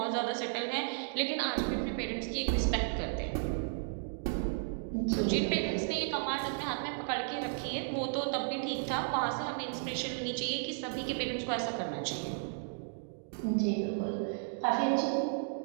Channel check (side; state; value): left; silent; digital silence